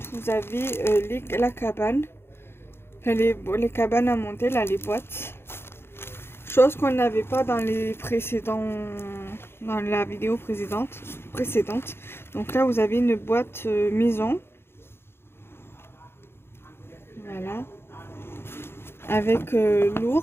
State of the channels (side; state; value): right; late; 0.11 ms